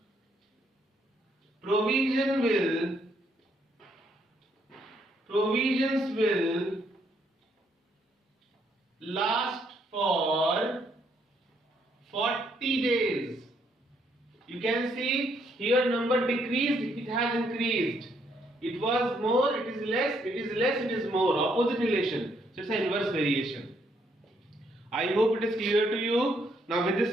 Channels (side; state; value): both; normal; correlation 0.72